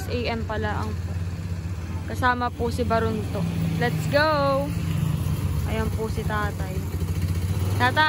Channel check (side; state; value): both; identical; correlation 1.00